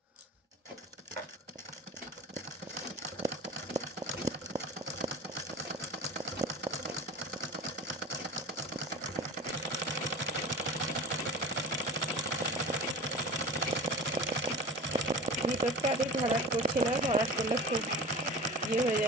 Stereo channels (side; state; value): both; normal; correlation 0.36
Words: ভিতরটা আমি ভরাট করছি না, ভরাট করলে খুব হয়ে